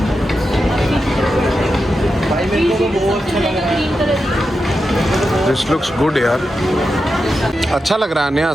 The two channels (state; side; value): normal; both; correlation 0.89